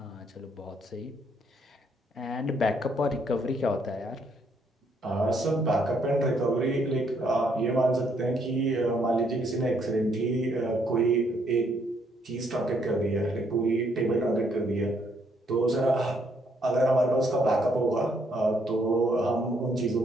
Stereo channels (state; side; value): normal; both; correlation 0.71